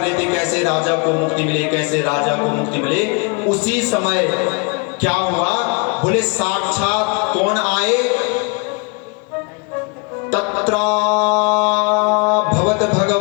थे कैसे राजा को मुक्ति मिले, कैसे राजा को मुक्ति मिले। उसी समय क्या हुआ, बोले साक्षात कौन आए, तत्र भवत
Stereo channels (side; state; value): right; quieter; 32.4 dB